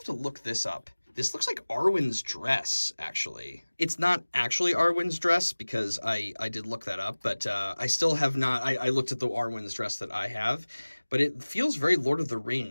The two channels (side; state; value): both; inverted; correlation -1.00